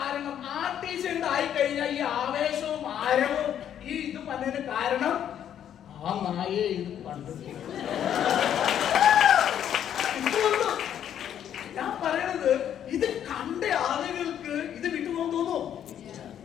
RTC ഉണ്ടായി കഴിഞ്ഞാൽ ഈ ആവേശവും ആരവവും ഈ ഇത് പറഞ്ഞതിന് കാരണം ആ നായയെ ഇത് കണ്ടിട്ടില്ല. ഞാൻ പറയണത് ഇത് കണ്ട ആളുകൾക്ക് ഇത് വിട്ടുപോകാൻ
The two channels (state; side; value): quieter; right; 9.8 dB